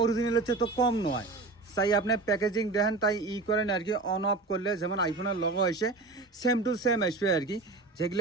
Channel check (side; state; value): left; quieter; 3.5 dB